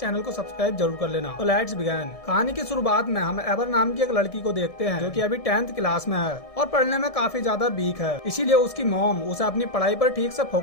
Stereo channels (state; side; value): late; right; 1.7 ms